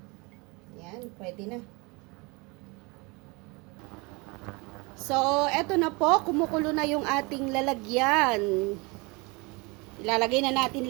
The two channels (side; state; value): left; quieter; 27.3 dB